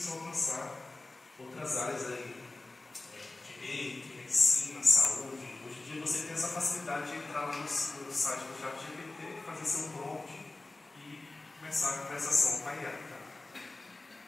a alcançar outras áreas aí, direito, medicina, saúde. Hoje em dia você tem essa facilidade de entrar lá no site do ChatGPT, fazer seu prompt e começar a conversação com a IA. Tá?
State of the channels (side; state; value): right; quieter; 3.1 dB